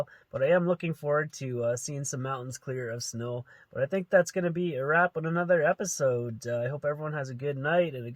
But I am looking forward to seeing some mountains clear of snow. But I think that's going to be a wrap on another episode. I hope everyone has a good night and a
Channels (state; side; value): identical; both; correlation 1.00